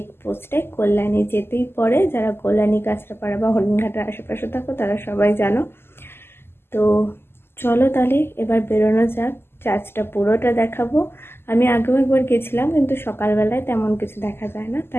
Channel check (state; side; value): late; right; 0.12 ms